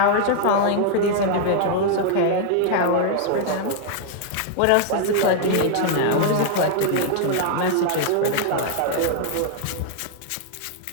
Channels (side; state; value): both; different; correlation 0.00